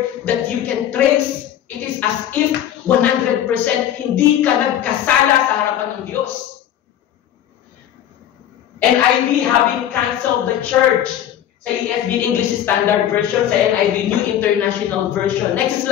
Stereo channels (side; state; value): right; quieter; 10.9 dB